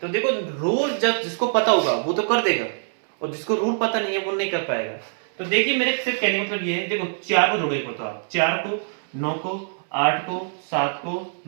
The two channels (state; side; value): silent; left; digital silence